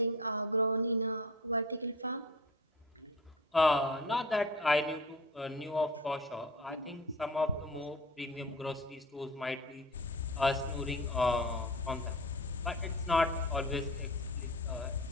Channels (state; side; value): normal; both; correlation 0.37